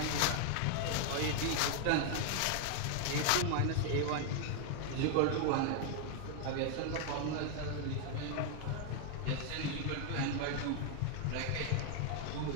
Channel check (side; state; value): both; different; correlation 0.00